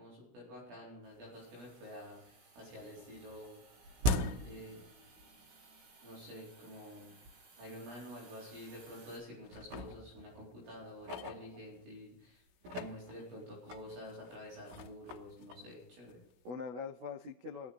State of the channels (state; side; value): late; left; 16 ms